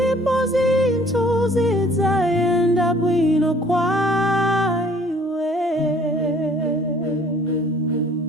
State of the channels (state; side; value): normal; both; correlation 0.56